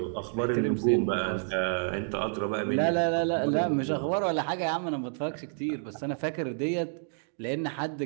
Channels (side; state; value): left; silent; digital silence